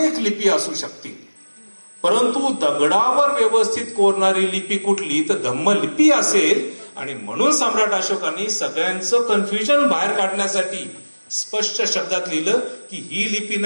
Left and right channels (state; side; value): inverted; both; correlation -1.00